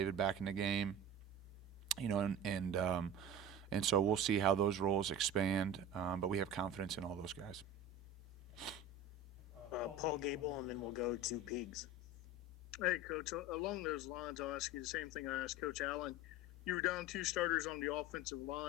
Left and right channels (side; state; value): both; normal; correlation 0.32